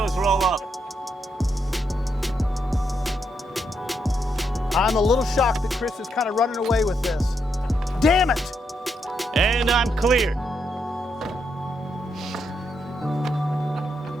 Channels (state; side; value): normal; both; correlation 0.80